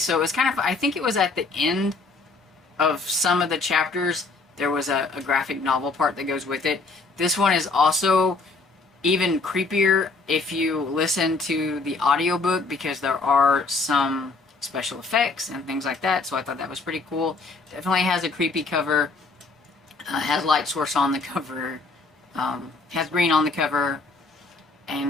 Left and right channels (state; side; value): quieter; right; 3.8 dB